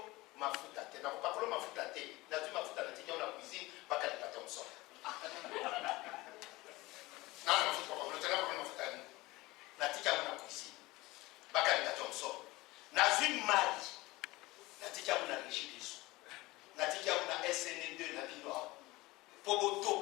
mafuta te nakopakola mafuta te nazwi mafuta natika na cuisine bakalinga te mosolo nana mafuta papakolotena mafuta yani natika na cuisine bakalinga te mosolo nazwi mali natika na régie des eaux natika na SN2 na bino awa po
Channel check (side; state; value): right; quieter; 20.5 dB